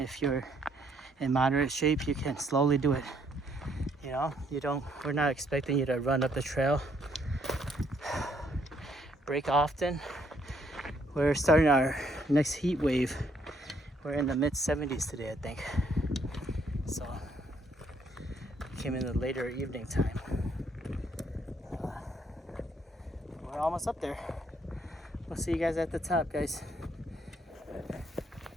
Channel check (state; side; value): normal; both; correlation 0.70